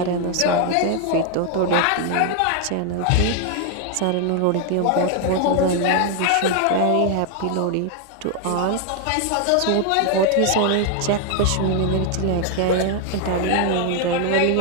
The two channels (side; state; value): both; different; correlation 0.00